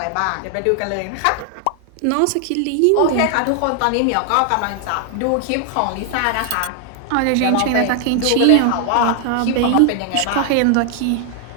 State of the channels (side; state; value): both; different; correlation 0.00